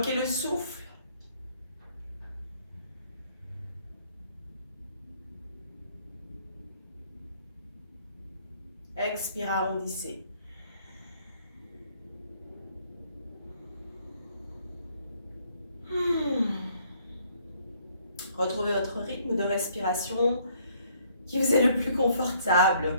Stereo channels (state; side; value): inverted; both; correlation -0.65